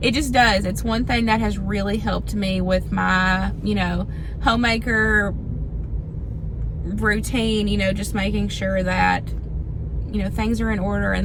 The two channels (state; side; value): identical; both; correlation 1.00